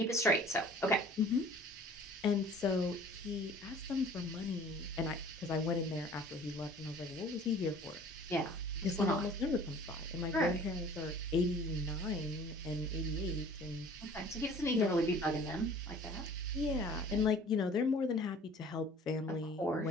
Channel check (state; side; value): normal; both; correlation 0.48